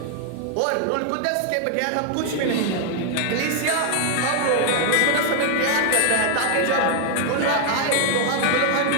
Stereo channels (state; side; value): different; both; correlation 0.00